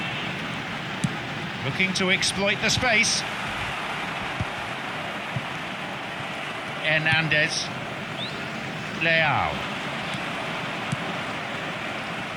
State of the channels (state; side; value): identical; both; correlation 1.00